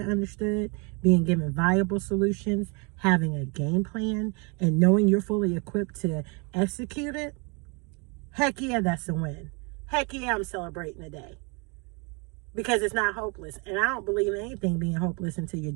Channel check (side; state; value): left; quieter; 32.1 dB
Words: understood, being given viable solutions, having a game plan, and knowing you're fully equipped to execute it, heck yeah, that's a win. Heck yeah, I'm celebrating today. Because it's not hopeless. And I don't believe in anything being hopeless until you're